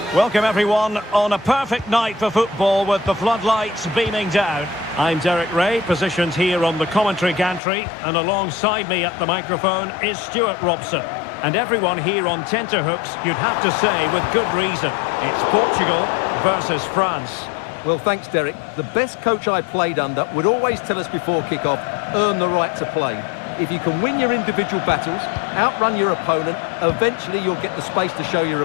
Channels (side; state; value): right; drops out; at 7.6 s